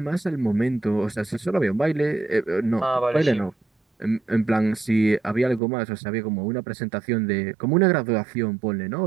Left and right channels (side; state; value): left; drops out; at 5.6 s